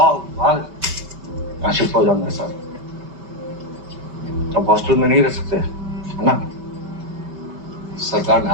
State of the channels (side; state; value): left; late; 5.2 ms